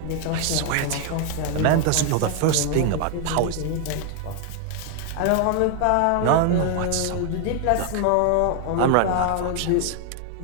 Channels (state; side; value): different; both; correlation 0.00